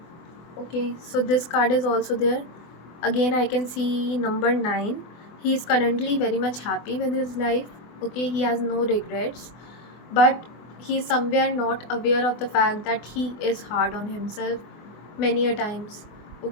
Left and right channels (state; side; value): late; right; 24 ms